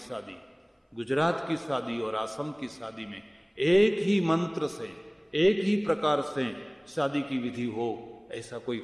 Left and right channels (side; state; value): both; identical; correlation 1.00